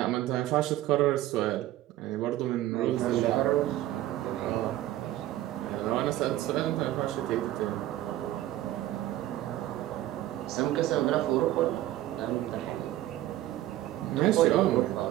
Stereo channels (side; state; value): left; quieter; 14.5 dB